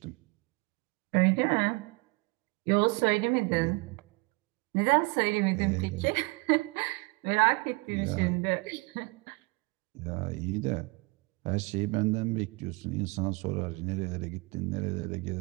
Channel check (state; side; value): quieter; left; 27.8 dB